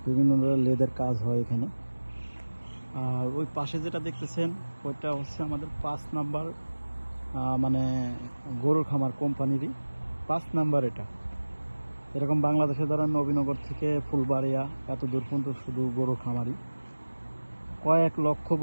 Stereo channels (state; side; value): inverted; both; correlation -1.00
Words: বিভিন্ন ধরনের লেদের কাজ হয় এখানে। আর ওই পাশে যেটা দেখতেছেন ওইটা হচ্ছে আমাদের 5 নাম্বার মানে গরুর খামার কোম্পানিরই 5 নাম্বার। এটা এরকম বাংলাদেশে ধরেন নবীনগর থেকে ফুলবাড়িয়া এত দূর পর্যন্ত শুধু গরুর খামারই, কয়েক লক্ষ